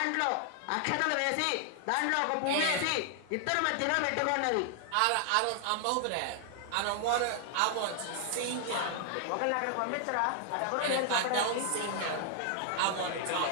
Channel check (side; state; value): both; different; correlation 0.00